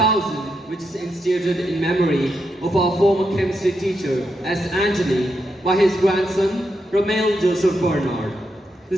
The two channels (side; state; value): both; normal; correlation 0.83